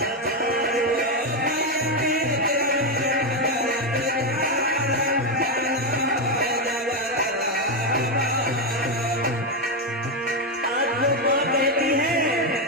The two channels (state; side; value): normal; both; correlation 0.06